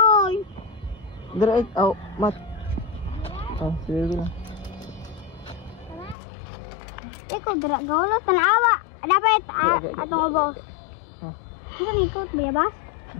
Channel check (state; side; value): drops out; right; at 6.2 s